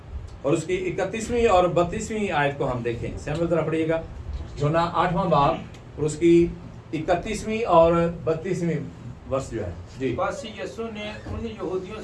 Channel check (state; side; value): identical; both; correlation 1.00